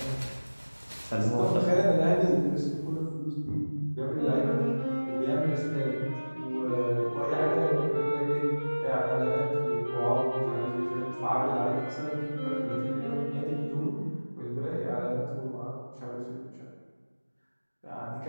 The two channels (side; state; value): both; inverted; correlation -1.00